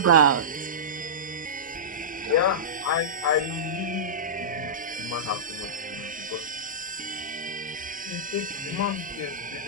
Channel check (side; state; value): both; normal; correlation -0.16